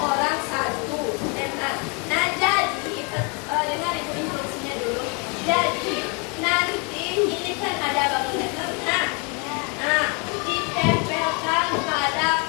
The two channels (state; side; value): quieter; right; 34.2 dB